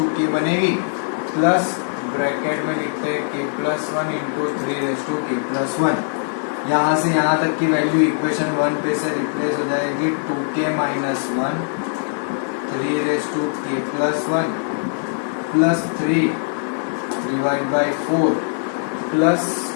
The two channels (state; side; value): silent; right; digital silence